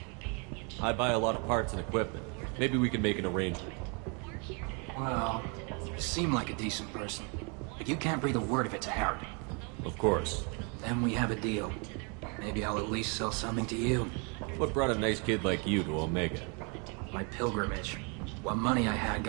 I buy a lot of parts and equipment. Maybe we can make an arrangement. Well, you seem like a decent person, but you can't breathe a word if it's a Herod. Of course. Then we have a deal. Maybe I'll at least sell something to you. What brought a nice kid like you to Omega? My pilgrimage. What money I had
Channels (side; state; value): left; quieter; 34.3 dB